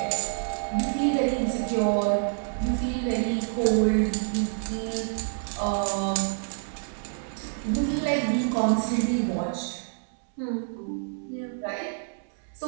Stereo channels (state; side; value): silent; left; 60 dB below the other